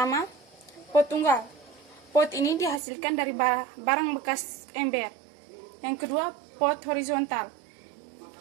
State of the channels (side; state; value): left; drops out; at 2.8 s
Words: pot tunggal. Pot ini dihasilkan dari barang bekas ember. Yang kedua, pot horizontal.